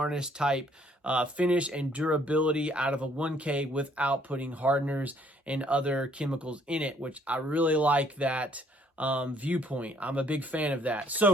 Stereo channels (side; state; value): both; normal; correlation 0.63